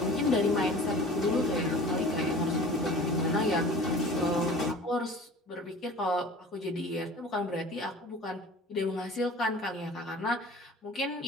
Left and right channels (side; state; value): both; normal; correlation 0.43